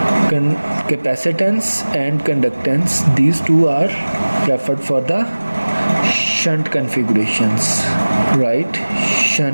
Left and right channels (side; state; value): both; inverted; correlation -1.00